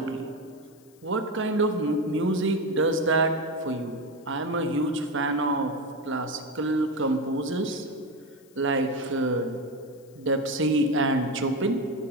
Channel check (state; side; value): noise; left; hiss, 30 dB below the sound